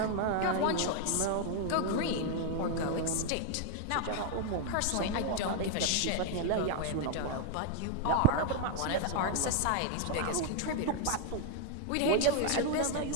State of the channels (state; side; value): different; both; correlation 0.00